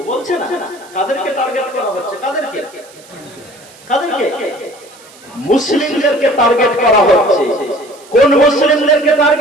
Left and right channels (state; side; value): noise; right; hiss, 24 dB below the sound